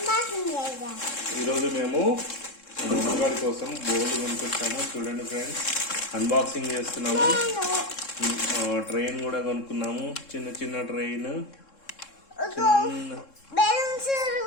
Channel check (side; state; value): right; late; 3.7 ms